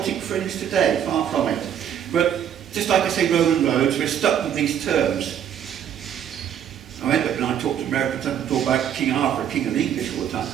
fringe today, far from it. But just like I say Roman roads, we're stuck with these terms. I end up when I talk to Americans, I talk about King Arthur, King of the English all the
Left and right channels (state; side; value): quieter; left; 9.4 dB